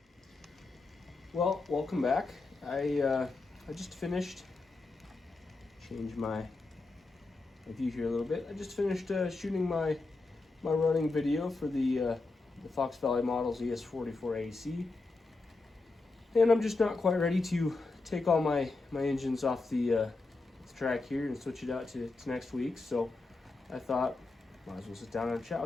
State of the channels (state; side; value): quieter; right; 3.5 dB